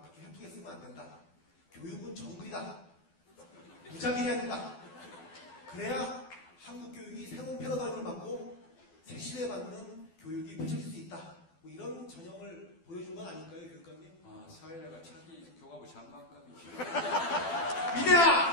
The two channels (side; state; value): right; late; 12 ms